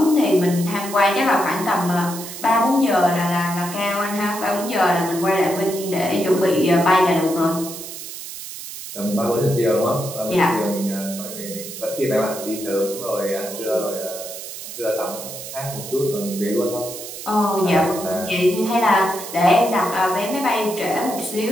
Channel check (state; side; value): noise; right; hiss, 10 dB below the sound